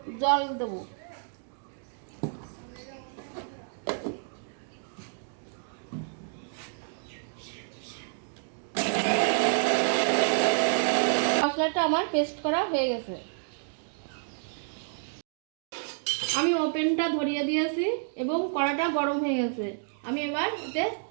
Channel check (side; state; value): left; silent; digital silence